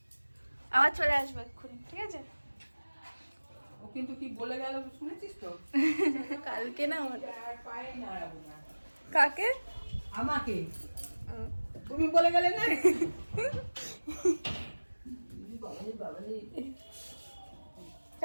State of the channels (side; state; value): both; inverted; correlation -1.00